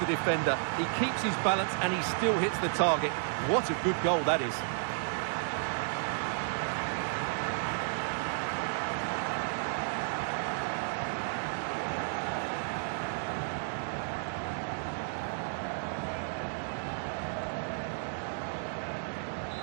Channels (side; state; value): left; silent; digital silence